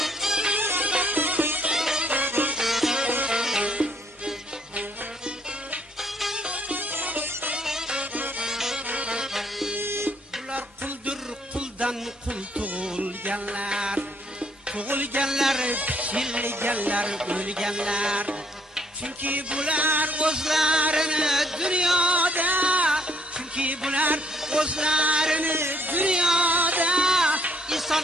Bular quldir, quldan qul tug'ilganlar, tug'ilganlar, pichilganlar, o'lganlar. Chunki bular o'zlarini dunyoda, chunki bular o'zlarini dunyoda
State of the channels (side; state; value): both; normal; correlation 0.66